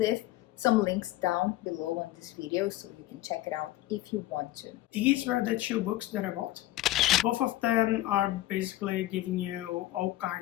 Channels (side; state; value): right; quieter; 16.1 dB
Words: some links down below on this video so you can check it out if you want to. These were the 2 books that I bought. Both of them are basically giving you all